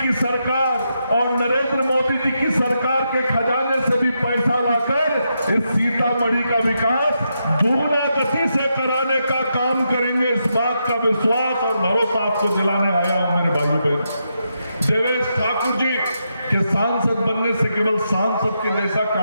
सरकार और नरेंद्र मोदी जी की सरकार के खजाने से भी पैसा लाकर इस सीतामढ़ी का विकास दुगना गति से कराने का काम करेंगे। इस बात का विश्वास और भरोसा आपको दिलाने आया हूं मेरे भाइयों बहनों। देवेश ठाकुर जी के सांसद बनने से केवल सांसद के जैसा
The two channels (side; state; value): both; inverted; correlation -0.83